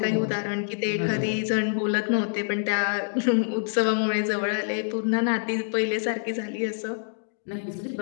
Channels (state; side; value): silent; right; digital silence